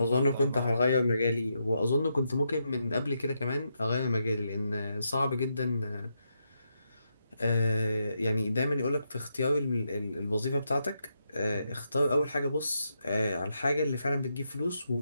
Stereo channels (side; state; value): both; inverted; correlation -0.82